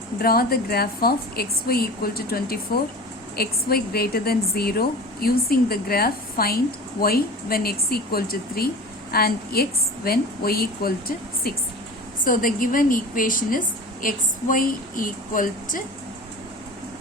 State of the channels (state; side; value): normal; both; correlation 0.35